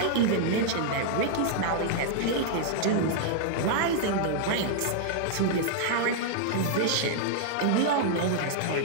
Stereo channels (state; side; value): different; both; correlation -0.01